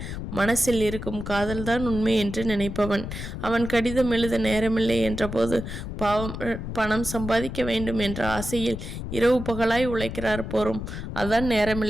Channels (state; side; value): noise; left; rumble, 7 dB below the sound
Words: மனசில் இருக்கும் காதல்தான் உண்மை என்று நினைப்பவன். அவன் கடிதம் எழுத நேரமில்லை என்றபோது பாவம், பணம் சம்பாதிக்க வேண்டும் என்ற ஆசையில் இரவு பகலாய் உழைக்கிறார் போரும். அதான்